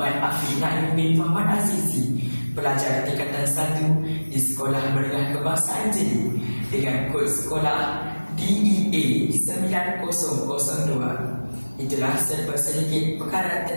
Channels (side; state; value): both; inverted; correlation -1.00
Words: Afiq Naim bin Muhammad Azizi, pelajar tingkatan 1 di Sekolah Menengah Kebangsaan Jeli dengan kod sekolah DEA 9002. Itulah serba sedikit perkara